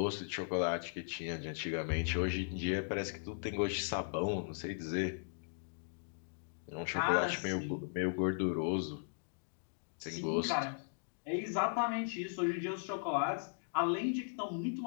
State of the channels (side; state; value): right; silent; digital silence